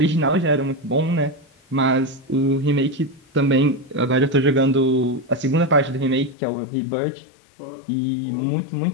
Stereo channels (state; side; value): drops out; right; at 6.4 s